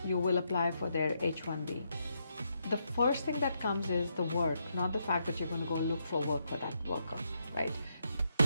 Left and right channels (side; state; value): both; inverted; correlation -0.80